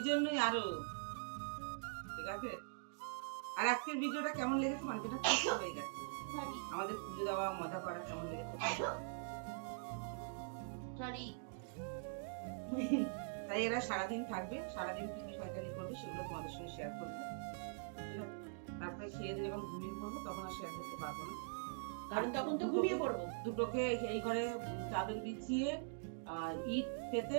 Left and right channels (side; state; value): left; silent; digital silence